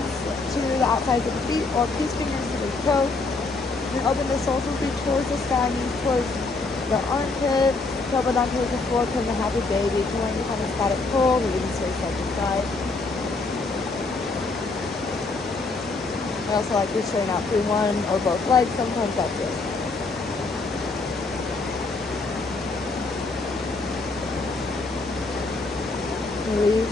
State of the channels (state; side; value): quieter; right; 3.7 dB